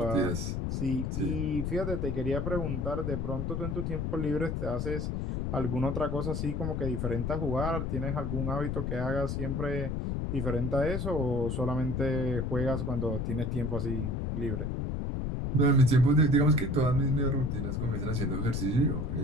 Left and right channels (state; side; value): noise; left; rumble, 1 dB below the sound